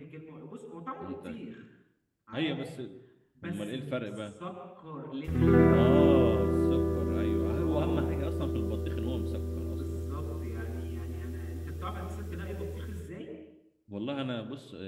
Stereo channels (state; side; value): identical; both; correlation 1.00